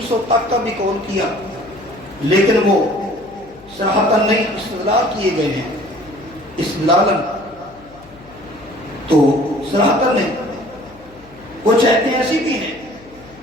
تک کا بھی قول کیا، لیکن وہ صراحتاً نہیں استدلال کیے گئے ہیں، استدلالاً تو صراحتاً نہیں، کچھ آیتیں ایسی بھی ہیں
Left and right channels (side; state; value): left; noise; hum, 24 dB below the sound